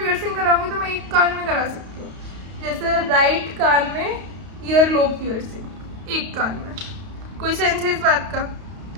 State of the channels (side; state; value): left; late; 32 ms